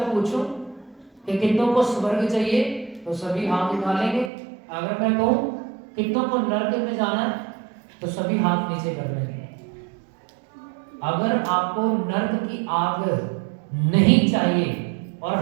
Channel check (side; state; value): left; drops out; at 4.3 s